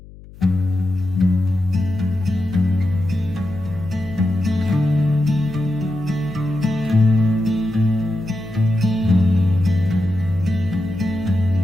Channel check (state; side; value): noise; left; hum, 19 dB below the sound